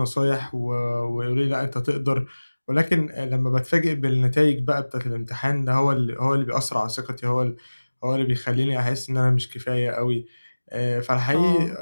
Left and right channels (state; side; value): inverted; both; correlation -1.00